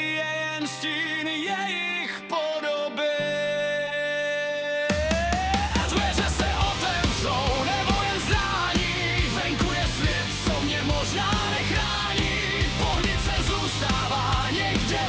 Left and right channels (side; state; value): both; identical; correlation 1.00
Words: je jen stín jejich podoby. Dveře se otevřou, nebo jen zdání, venku je svět, co mě možná nechrání. Pohnice zůstává někde